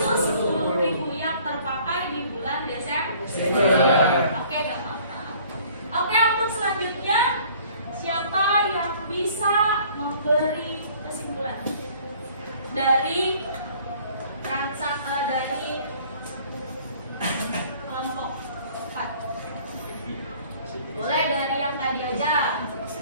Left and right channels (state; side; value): inverted; both; correlation -0.54